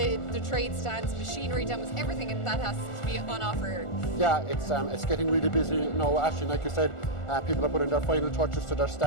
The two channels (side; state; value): right; late; 1.4 ms